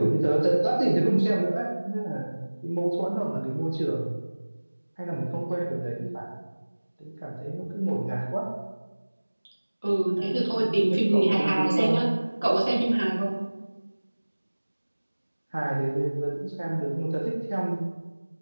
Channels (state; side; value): inverted; both; correlation -1.00